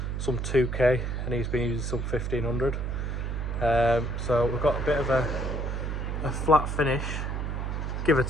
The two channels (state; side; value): noise; right; hum, 2 dB below the sound